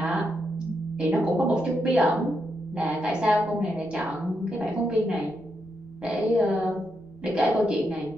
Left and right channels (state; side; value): noise; left; rumble, 26 dB below the sound